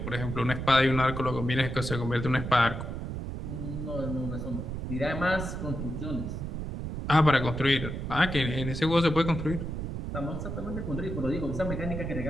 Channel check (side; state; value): right; noise; rumble, 5 dB below the sound